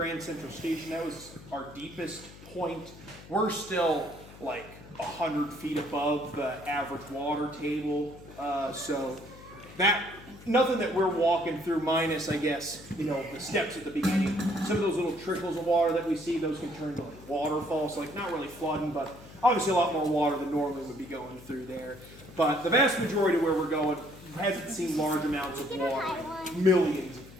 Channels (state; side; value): noise; left; hum, 18 dB below the sound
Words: Central Station, that was our deepest point. We're still like 100 feet above the average water table. So that, nothing that we're walking through minus, I guess, the steps at the beginning. Some of those little trickles of water that we see, those can turn into like waterfalls, like not really flooding, but obviously a lot more water than normally would be going through there. But the vast majority of where we're going hasn't seen large amounts of water in millions of